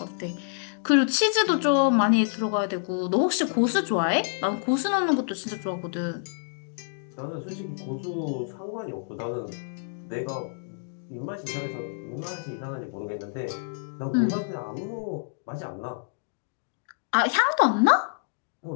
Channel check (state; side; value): silent; right; digital silence